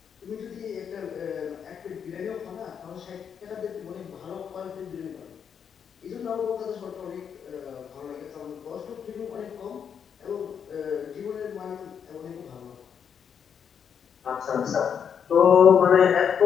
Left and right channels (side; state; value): right; quieter; 7.6 dB